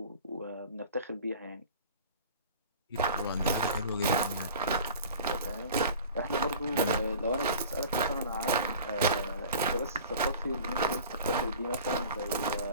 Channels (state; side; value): inverted; both; correlation -0.42